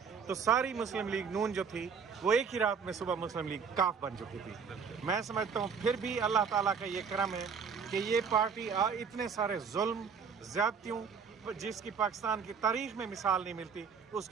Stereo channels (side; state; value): left; quieter; 6.2 dB